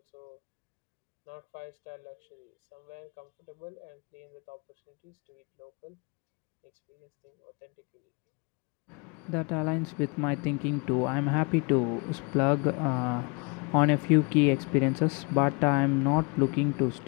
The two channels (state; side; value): quieter; right; 31.4 dB